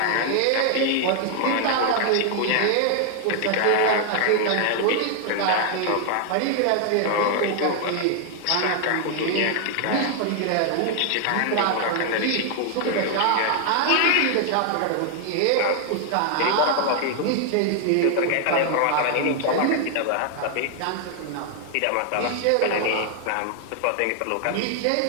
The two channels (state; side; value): different; both; correlation 0.00